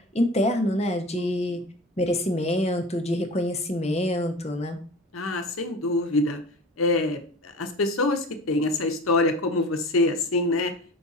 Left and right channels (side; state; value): both; normal; correlation 0.36